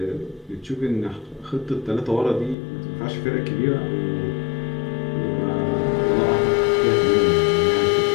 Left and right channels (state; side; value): drops out; right; at 2.6 s